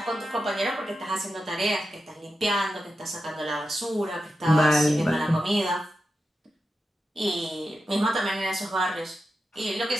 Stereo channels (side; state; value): both; normal; correlation 0.90